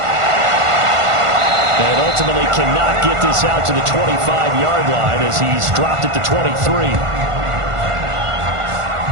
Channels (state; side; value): late; left; 1.5 ms